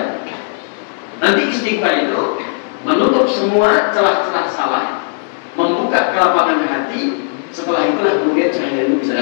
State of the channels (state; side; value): silent; right; 69 dB below the other